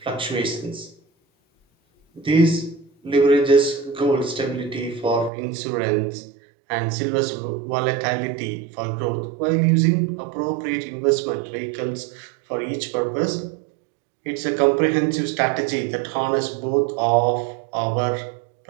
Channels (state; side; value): drops out; left; at 5.3 s